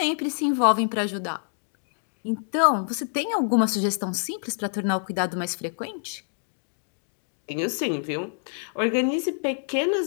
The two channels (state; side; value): silent; right; digital silence